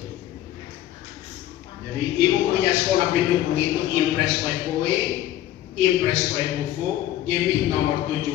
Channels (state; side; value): quieter; right; 13.2 dB